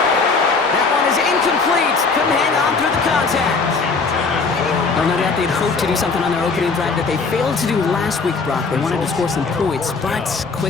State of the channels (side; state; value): right; quieter; 4.4 dB